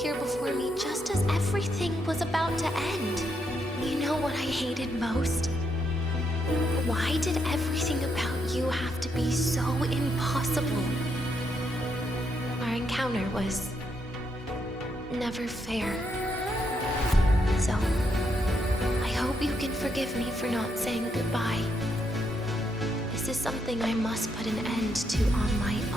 before me just as everything was about to end? You know what I hated most? Why did everything about you have to be so impossible? Our encounter was never fair. So, I hope you can forgive me for not saying goodbye. This is something I must put an end to on my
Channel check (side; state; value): both; normal; correlation 0.78